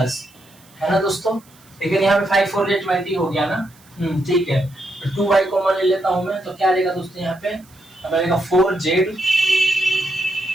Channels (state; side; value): noise; right; hiss, 28 dB below the sound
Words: है ना दोस्तों। लेकिन यहाँ पे 5 4 20 हो गया ना, ठीक है। तो 2y कॉमन ले लेता हूँ मैं, तो क्या रहेगा दोस्तों यहाँ पे अब आएगा 4z।